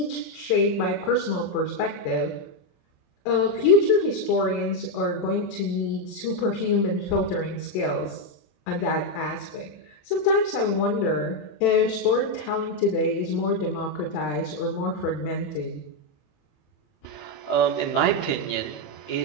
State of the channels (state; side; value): late; right; 27 ms